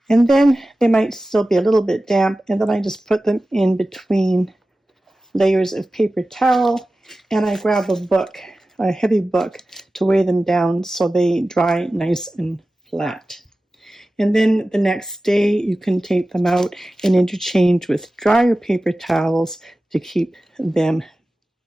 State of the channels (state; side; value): normal; both; correlation 0.95